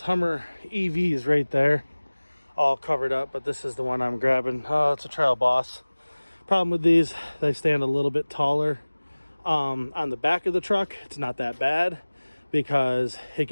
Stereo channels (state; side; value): inverted; both; correlation -1.00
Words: Hummer EVs right there, all covered up, but this is the one I'm grabbing. Oh, it's a Trail Boss. Problem with these, they stand a little bit taller. On the back of the truck, it's not that bad, because it